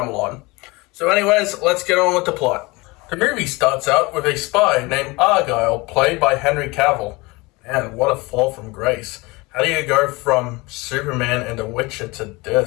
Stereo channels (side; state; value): right; quieter; 24.1 dB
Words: So anyways, let's get on with the plot. The movie starts out with a spy named Argylle, played by Henry Cavill. Man, what a fall from grace. How do you go from Superman and The Witcher to